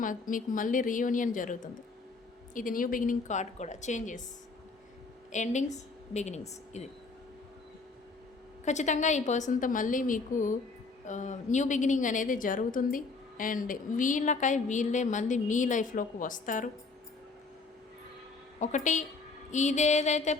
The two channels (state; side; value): quieter; right; 4.0 dB